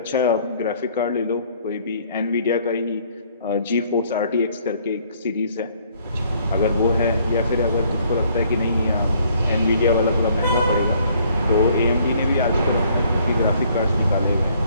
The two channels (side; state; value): both; inverted; correlation -0.63